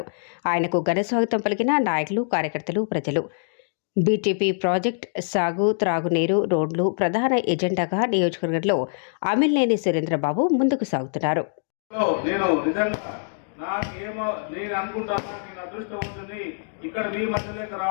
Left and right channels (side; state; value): right; silent; digital silence